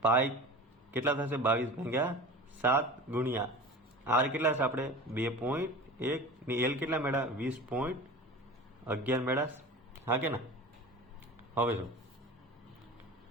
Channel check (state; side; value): normal; both; correlation 0.35